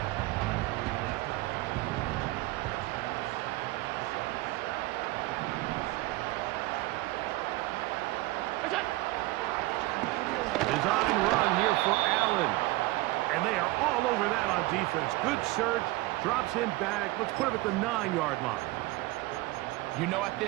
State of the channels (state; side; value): quieter; left; 19.7 dB